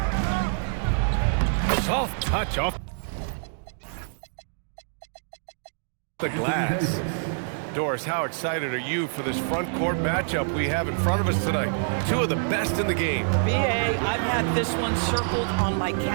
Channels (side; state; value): left; silent; digital silence